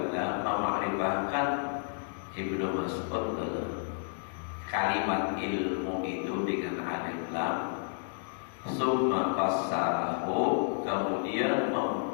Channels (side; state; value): right; silent; digital silence